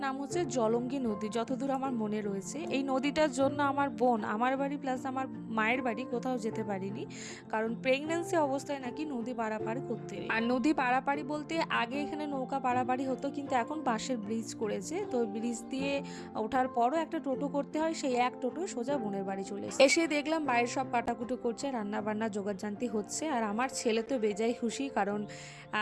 নাম হচ্ছে জলঙ্গি নদী, যতদূর আমার মনে রয়েছে। এই নদীটার জন্য আমার বোন আমার বাড়ি প্লাস আমার মায়ের বাড়ি কোথাও যেতে পারিনি, কারণ প্রেগন্যান্সি অবস্থায় নাকি নদী পারাপারি করতে নেই। আর নদী পারাপারি বলতে আগে এখানে নৌকা পারাপারি হতো, কিন্তু এখন বাঁশের ব্রিজ করেছে, তো ব্রিজ দিয়ে ওঠার পরও একটা টোটো করতে হয়, সেই এক টোটো সোজা বোনের বাড়ি চলে এসে দেখলাম বাইরের সব কাটাকুটো করছে, রান্না বান্না জোগাড়জান্তি হচ্ছে। আর আমার ছেলে তো বেজায় খুশি, কারণ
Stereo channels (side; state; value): both; identical; correlation 1.00